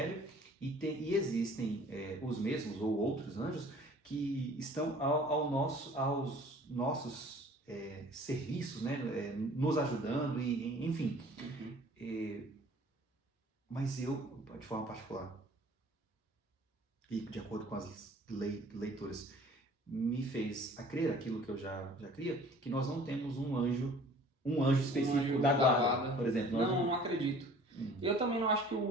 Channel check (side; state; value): both; normal; correlation 0.50